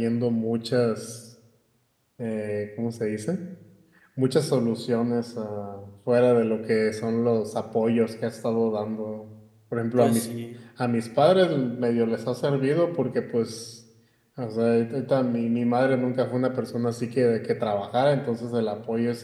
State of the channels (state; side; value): identical; both; correlation 1.00